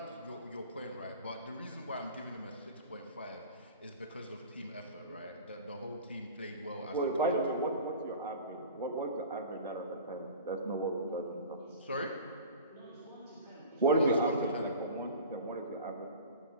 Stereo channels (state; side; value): inverted; both; correlation -0.38